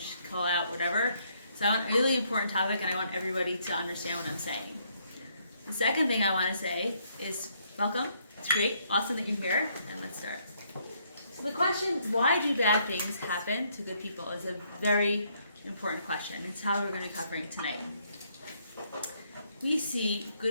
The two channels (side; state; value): both; inverted; correlation -0.71